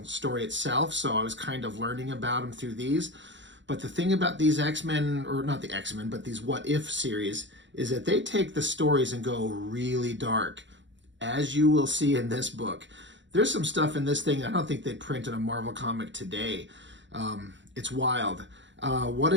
story itself, so I was kind of learning about them through these. But the thing about these X-Men, or not the X-Men, but these What If series, is that they take the stories and go really dark, as you will see in this book. There's some stuff in this thing I don't think they'd print in a Marvel comic today. It's wild. What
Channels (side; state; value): left; late; 0.54 ms